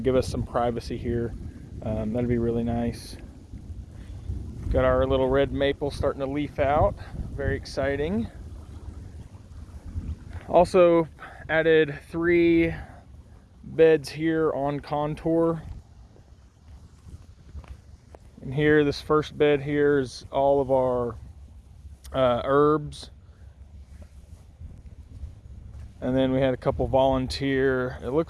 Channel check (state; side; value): identical; both; correlation 1.00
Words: give us some privacy here. That'd be really nice. Got our little red maple starting to leaf out, very exciting. Also added 3 beds here on contour. And here, this first bed here is all of our herbs. And then we had a couple volunteer, it